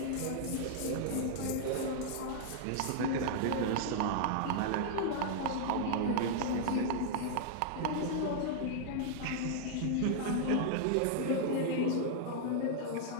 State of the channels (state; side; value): different; both; correlation -0.01